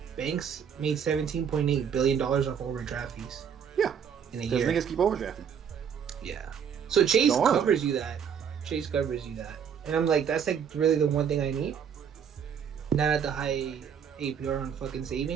banks made $17.8 billion off overdraft fees. Yeah, in a year. Because niggas keep overdrafting. Yeah. So Chase covers you that. Chase covers you that, and I'm like, that's like really the one thing I need. Not at the high APR on fucking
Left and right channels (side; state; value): left; quieter; 7.6 dB